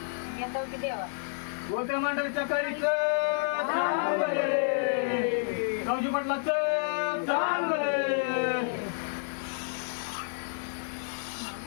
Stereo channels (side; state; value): right; silent; digital silence